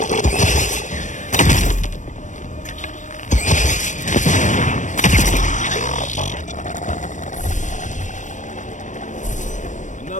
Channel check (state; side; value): late; right; 0.36 ms